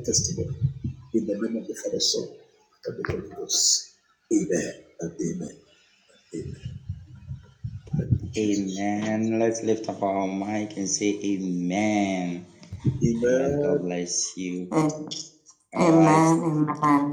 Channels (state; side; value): identical; both; correlation 1.00